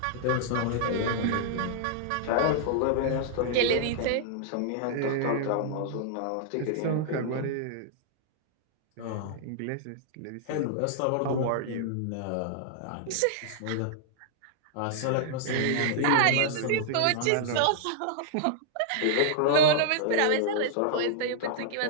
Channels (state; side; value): different; both; correlation -0.01